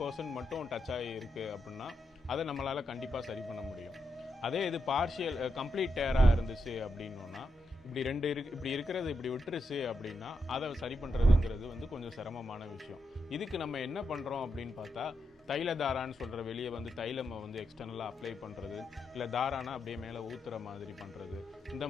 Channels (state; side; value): normal; both; correlation 0.84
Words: மட்டும் டச் ஆகி இருக்குது அப்படின்னா அதை நம்மளால் கண்டிப்பாக சரி பண்ண முடியும். அதே இது கம்ப்ளீட் டேராக இருந்துச்சு அப்படின்னா இப்படி இருக்கிறது இப்படி விட்டுருச்சு அப்படின்னா அதை சரி பண்ணுறதுங்கிறது வந்து கொஞ்சம் சிரமமான விஷயம். இதுக்கு நம்ம என்ன பண்ணுறோம் அப்படின்னு பார்த்தா, தைல தாரான்னு சொல்கிற வெளியே வந்து தைலமை வந்து எக்ஸ்டர்னலாக அப்ளை பண்ணுறது, இல்லை தாரானா அப்படியே மேலே ஊற்றுற மாதிரி பண்ணுறது, இந்த